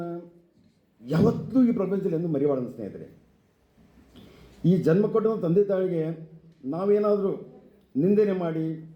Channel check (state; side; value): identical; both; correlation 1.00